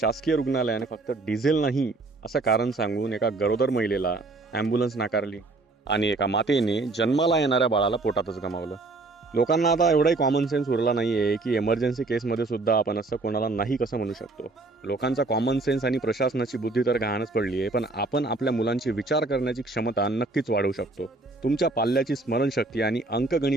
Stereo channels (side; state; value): left; quieter; 3.3 dB